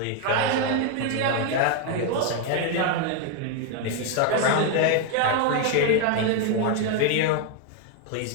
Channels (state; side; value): different; both; correlation 0.01